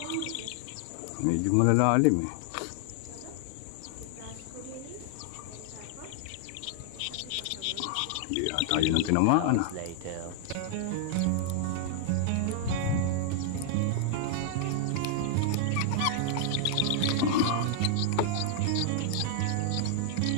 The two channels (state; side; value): different; both; correlation -0.01